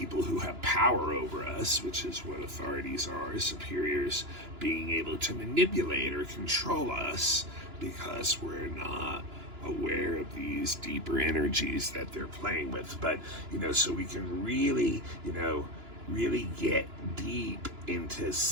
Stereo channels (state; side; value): late; left; 2.9 ms